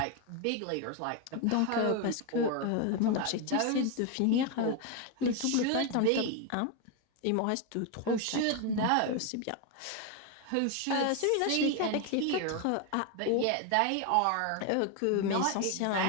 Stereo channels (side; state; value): both; different; correlation 0.01